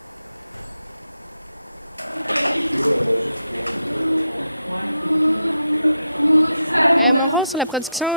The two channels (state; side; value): inverted; both; correlation -0.83